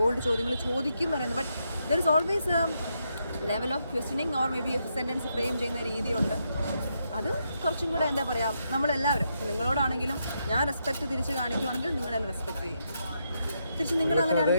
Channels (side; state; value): both; inverted; correlation -0.81